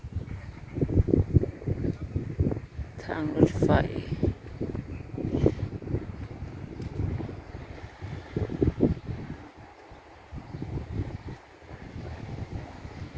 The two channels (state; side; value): identical; both; correlation 1.00